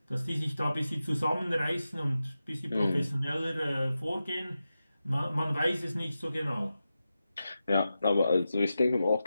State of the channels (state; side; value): inverted; both; correlation -0.92